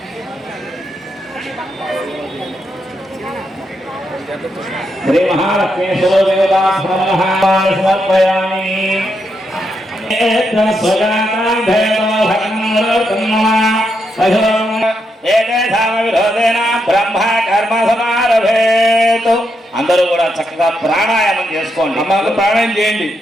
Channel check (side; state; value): both; normal; correlation 0.81